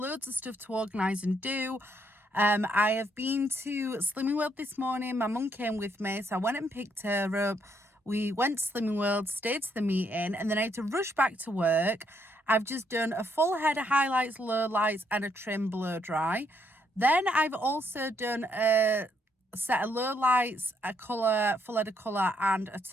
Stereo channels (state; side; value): normal; both; correlation 0.73